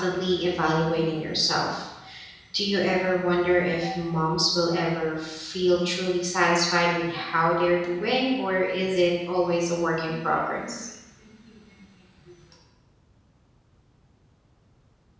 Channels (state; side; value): identical; both; correlation 1.00